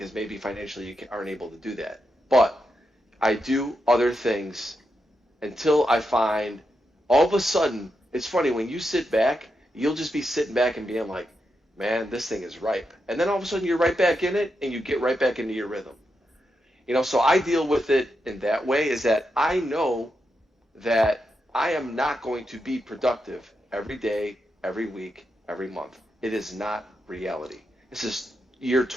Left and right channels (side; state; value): both; normal; correlation 0.85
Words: maybe financially you aren't able to do that. But I do other things until I find all of a sudden, it's funny, when you sit back, you'll just be sitting back and being like, man, this thing is ripe. And then all of a sudden you're right back in it and you get right back into your rhythm. So I deal with it in that way, is that I know that I am not going to be productive every day, every week, every month. It is not reality. This is year